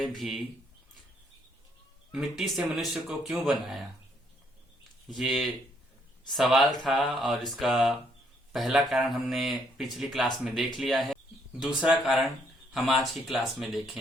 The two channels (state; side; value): normal; both; correlation 0.70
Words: भी मिट्टी से मनुष्य को क्यों बनाया। ये सवाल था और इसका पहला कारण हमने पिछली क्लास में देख लिया है। दूसरा कारण हम आज की क्लास में